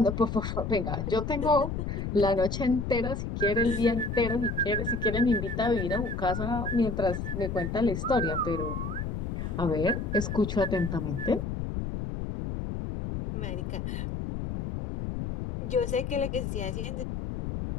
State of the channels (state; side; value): noise; left; rumble, 4 dB below the sound